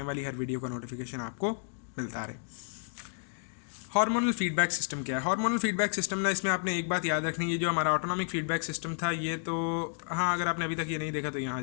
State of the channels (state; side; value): silent; right; digital silence